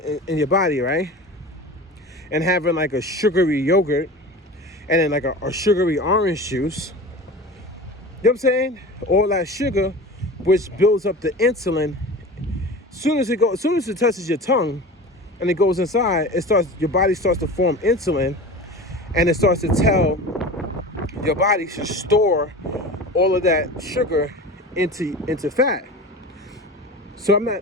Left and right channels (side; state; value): both; normal; correlation 0.34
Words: in your body, right? And having like a sugary yogurt and then like a sugary orange juice. You know what I'm saying? All that sugar, which builds up the insulin. As soon as it touches your tongue and it goes inside, your body starts to form insulin, and it starts to tell your body to store all of that sugar into fat. So